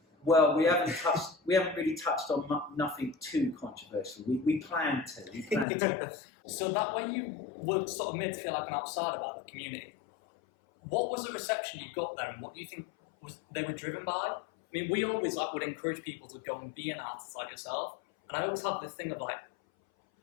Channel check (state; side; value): drops out; right; at 5.7 s